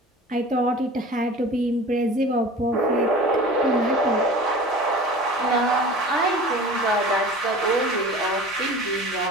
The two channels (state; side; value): normal; both; correlation 0.40